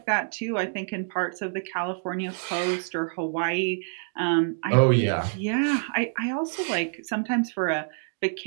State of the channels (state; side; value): silent; left; 60 dB below the other